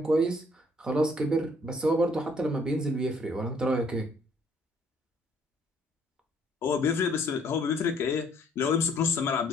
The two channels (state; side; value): normal; both; correlation 0.63